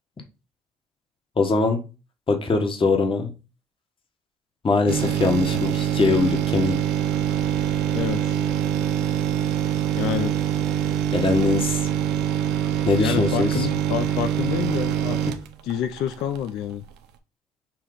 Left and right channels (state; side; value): normal; both; correlation 0.52